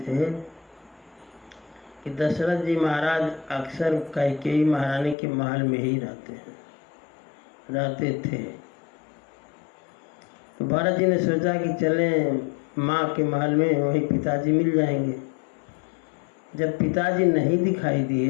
कि दशरथ जी महाराज अक्सर कैकेयी महारानी के महल में ही रहते थे। तो भरत जी ने सोचा कि चलें माँ के महल में, वही पिताजी मिल जाएंगे। जब पिताजी नहीं दिखाई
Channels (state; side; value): drops out; right; at 5.2 s